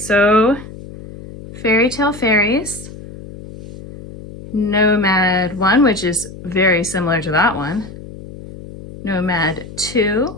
Fairy Tale Fairies, Nomad 1, which is very similar to that one, Nomad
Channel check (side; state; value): left; noise; hum, 15 dB below the sound